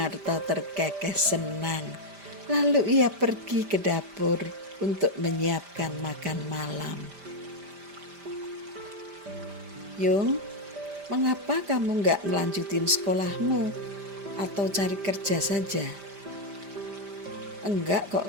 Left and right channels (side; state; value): left; late; 5.0 ms